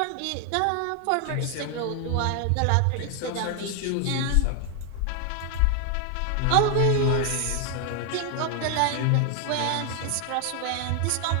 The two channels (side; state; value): both; different; correlation 0.00